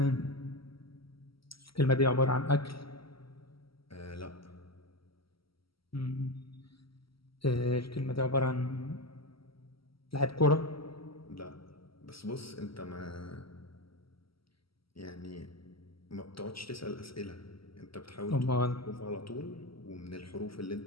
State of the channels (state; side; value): late; right; 0.75 ms